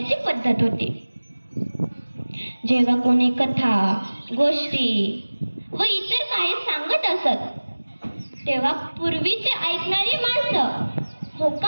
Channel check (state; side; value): inverted; both; correlation -1.00